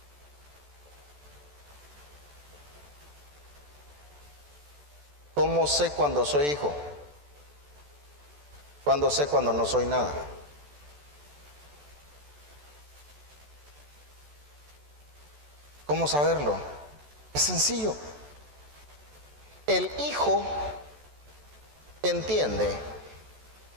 ¿Cómo sé cuando soy hijo? ¿Cuándo sé cuando no soy nada? ¿Cómo saberlo? Es sencillo. El hijo entiende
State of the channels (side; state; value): left; late; 14 ms